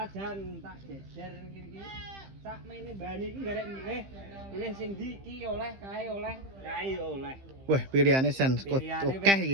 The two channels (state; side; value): late; left; 15 ms